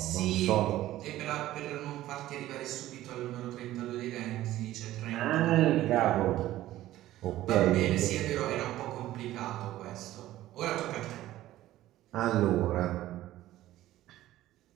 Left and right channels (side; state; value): left; quieter; 14.8 dB